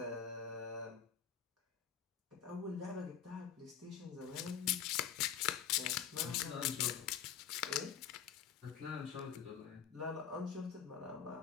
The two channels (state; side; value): quieter; right; 8.4 dB